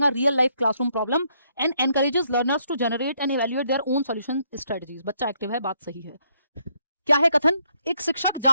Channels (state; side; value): inverted; both; correlation -0.72